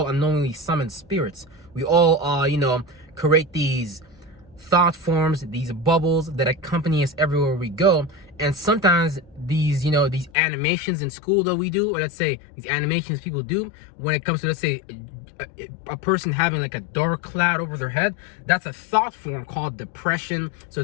unknowingly summon spirits. We all, you know, create these thought forms, these bubbles that accompany us everywhere we go. And sometimes these, you know, these animations in school that we do, or let's say these animations people do when it comes to, let's say, a person having like a dark cloud over their head, that's a thought form called depression. So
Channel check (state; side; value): drops out; right; at 10.3 s